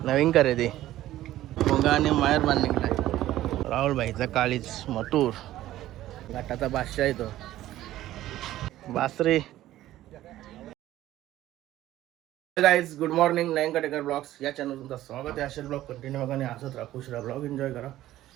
नवीन खरेदी मोगा आणि मायर बांध निघलाय. राहुल भाईचा काळीच मटूर घाटाचा बादशाह येतो बासरी. Guys good morning. Nayan Katekar blogs या चॅनल तुमचं स्वागत आहे. असे ब्लॉग कंटिन्यू बघा आणि हसत राहा, खुश राहा, ब्लॉग एन्जॉय करा.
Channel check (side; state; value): left; quieter; 14.3 dB